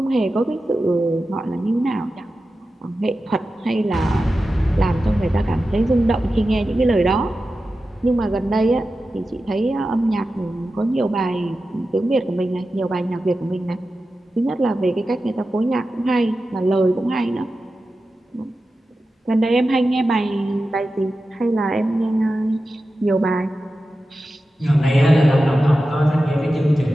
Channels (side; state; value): both; normal; correlation 0.93